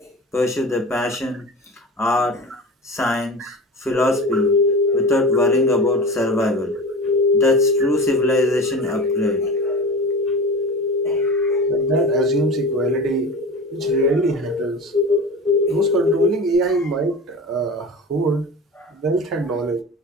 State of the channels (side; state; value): both; normal; correlation 0.32